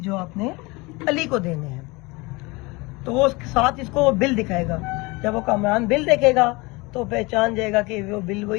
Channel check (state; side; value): quieter; right; 24.8 dB